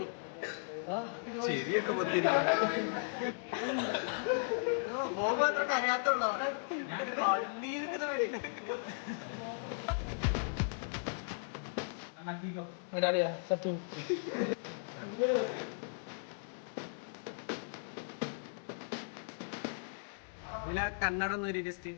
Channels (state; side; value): silent; right; digital silence